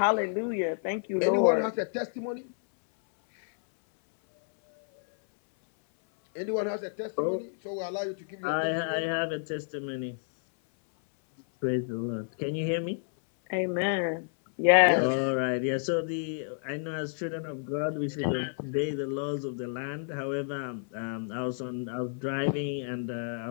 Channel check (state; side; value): silent; right; 57 dB below the other